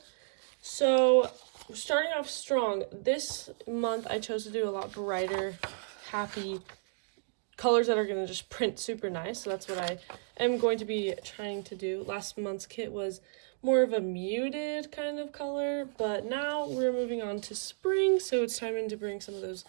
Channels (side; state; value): left; silent; digital silence